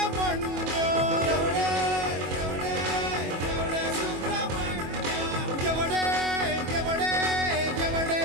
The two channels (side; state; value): left; late; 22 ms